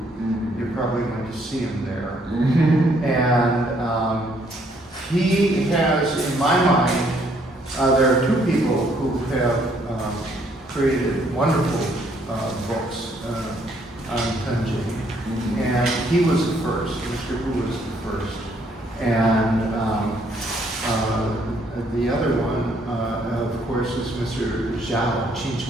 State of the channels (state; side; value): normal; both; correlation 0.67